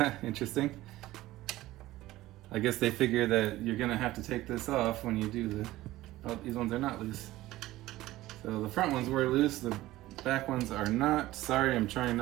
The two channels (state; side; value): quieter; left; 16.7 dB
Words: Interesting. I guess they figure that you're gonna have to take this off when you do the... Oh, these ones are not loose. So the front ones were loose, the back ones are not. Sorry, I'm trying